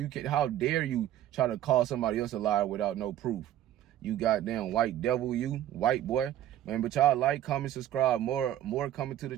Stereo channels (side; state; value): left; quieter; 12.2 dB